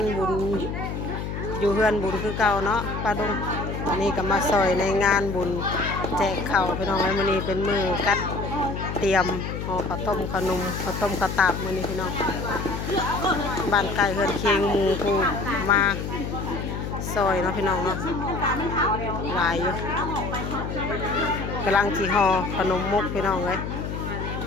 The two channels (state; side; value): noise; left; hum, 5 dB below the sound